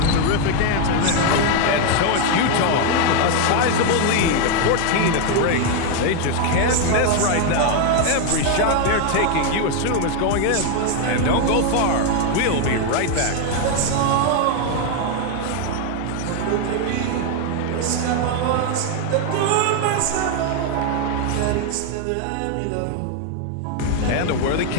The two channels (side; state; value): both; different; correlation 0.01